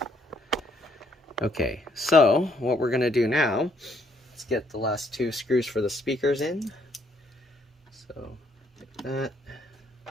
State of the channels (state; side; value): normal; both; correlation 0.69